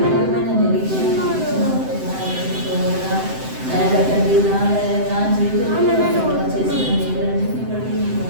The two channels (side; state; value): left; late; 7.8 ms